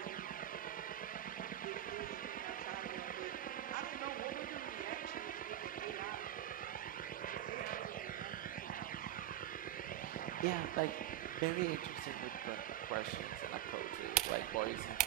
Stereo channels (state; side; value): quieter; left; 12.6 dB